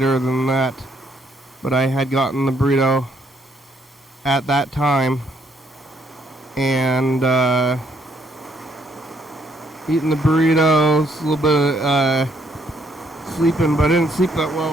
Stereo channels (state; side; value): normal; both; correlation 0.69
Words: than that, but I had gotten the burrito at that time, and eating the burritos, a little bit sleeping, but I didn't sleep that